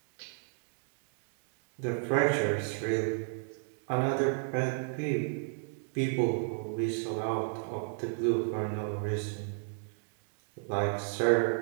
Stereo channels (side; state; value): left; silent; digital silence